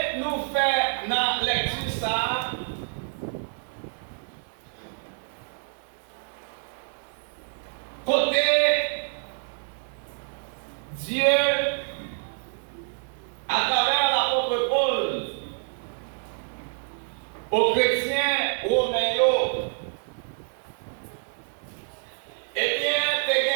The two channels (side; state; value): left; silent; digital silence